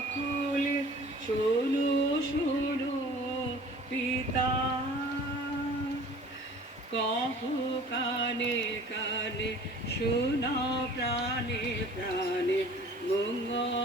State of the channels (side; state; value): both; normal; correlation 0.47